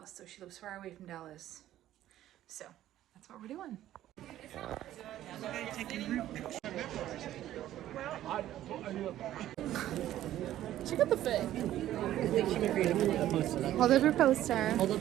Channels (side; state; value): left; quieter; 13.1 dB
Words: so she lives far away from Dallas. So that's what we're doing. Check out the fit. I think she might be able to post it. Hold up your poster. Hold